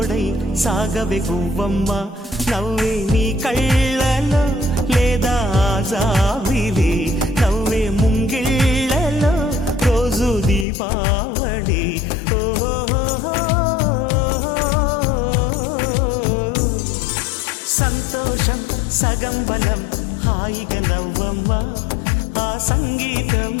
సాగవే గువ్వమ్మ నవ్వే నీ కళ్ళలో లేదా జాబిలి నవ్వే ముంగిళ్ళలో రోజు దీపావళి సంతోషం సగం బలం హాయిగా నవ్వమ్మ ఆ సంగీతం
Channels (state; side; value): drops out; right; at 10.7 s